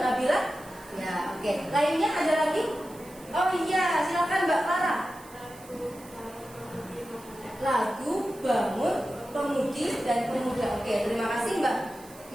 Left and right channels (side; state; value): right; noise; hiss, 22 dB below the sound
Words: Nabila. Ya, oke. Lainnya ada lagi? Oh iya, silakan Mbak Clara. Lagu Bangun Pemudi dan Pemuda. Oke, terima kasih Mbak.